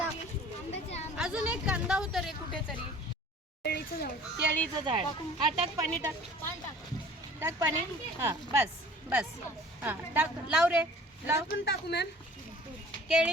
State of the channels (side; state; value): both; normal; correlation 0.48